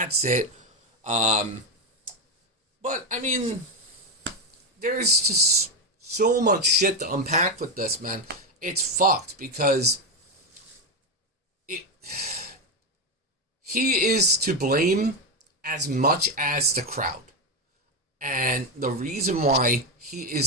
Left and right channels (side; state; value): both; normal; correlation 0.11